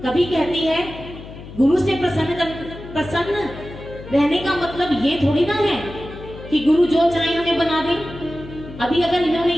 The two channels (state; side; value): noise; left; hum, 14 dB below the sound